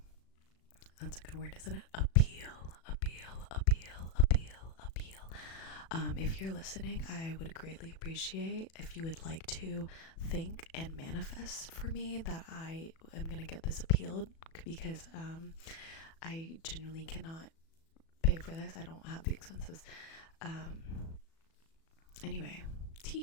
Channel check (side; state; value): right; late; 37 ms